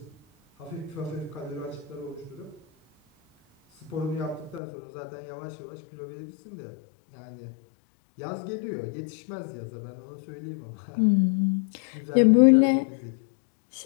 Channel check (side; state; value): right; drops out; at 4.6 s